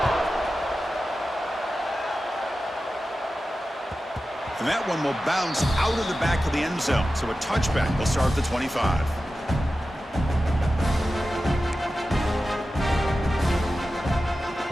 And that one will bounce out of the back of the end zone. So a touchback will start at the 25.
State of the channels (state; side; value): normal; both; correlation 0.94